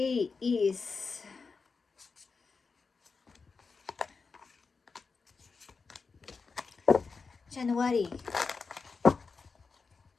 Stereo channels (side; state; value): right; quieter; 4.7 dB